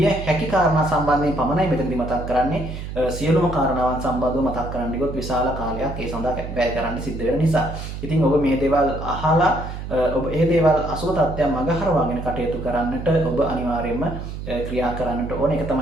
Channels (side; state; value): right; noise; hum, 8 dB below the sound